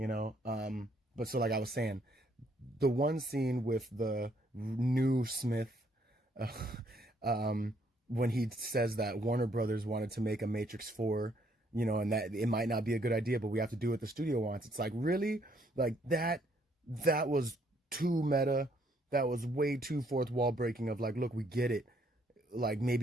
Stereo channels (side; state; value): both; normal; correlation 0.69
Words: so, like I was saying, the one scene with the new Smith, when he says that Warner Brothers wanted to make a Matrix 4, you know, and that it might not be a good idea, but we have to do what the studio wants. It's like, really? Like that was too meta. That was way too fourth wall breaking of like, look, we get it. Like